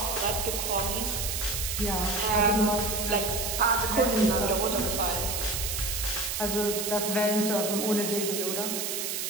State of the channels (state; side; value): noise; right; hiss, 2 dB below the sound